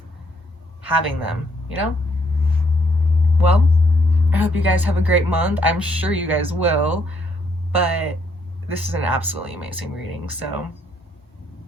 having them, you know? Well, I hope you guys have a great month. I'm sure you guys will, but this is an absolutely amazing reading, so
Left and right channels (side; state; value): both; normal; correlation 0.71